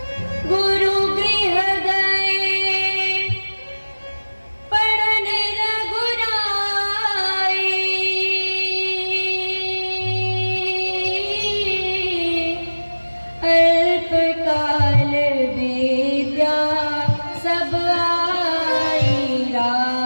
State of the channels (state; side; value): inverted; both; correlation -1.00